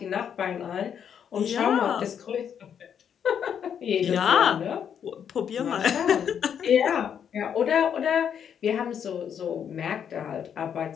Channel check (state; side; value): quieter; right; 8.2 dB